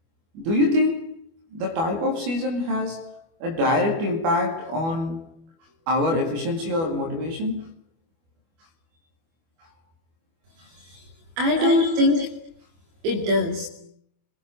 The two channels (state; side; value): late; left; 24 ms